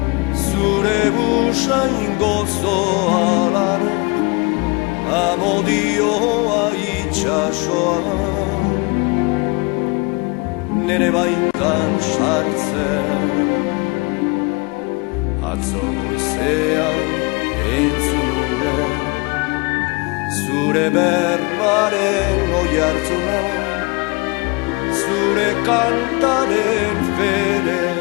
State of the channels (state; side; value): quieter; right; 28.2 dB